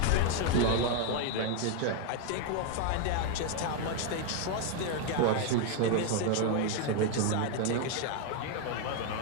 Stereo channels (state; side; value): different; both; correlation 0.00